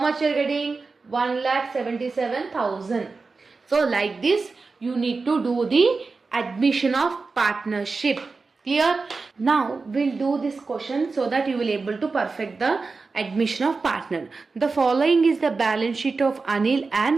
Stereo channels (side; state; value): left; quieter; 4.2 dB